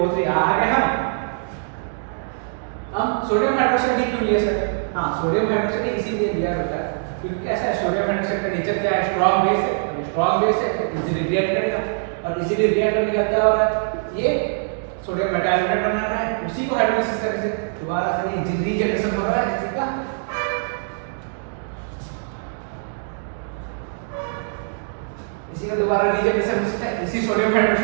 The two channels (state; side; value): silent; left; digital silence